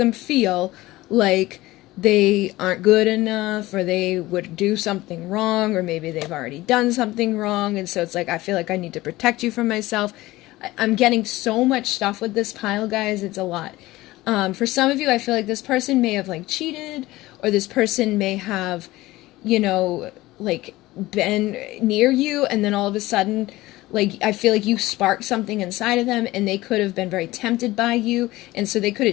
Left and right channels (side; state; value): right; quieter; 18.2 dB